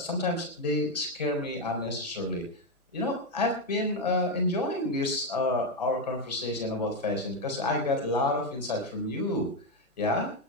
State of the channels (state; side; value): normal; both; correlation 0.06